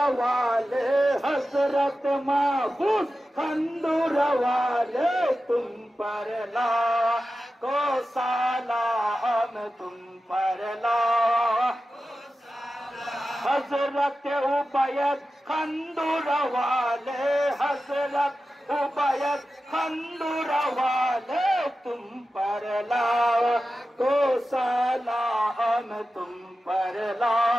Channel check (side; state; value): both; normal; correlation 0.93